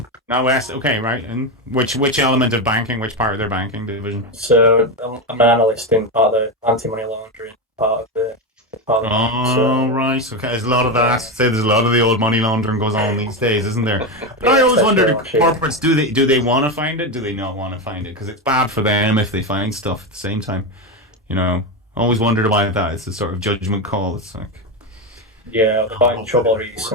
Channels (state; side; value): normal; both; correlation 0.13